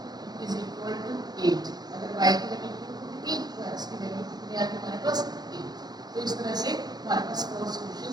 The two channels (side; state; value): left; late; 0.19 ms